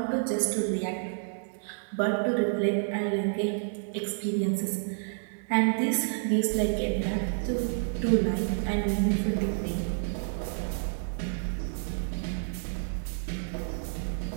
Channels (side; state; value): left; silent; digital silence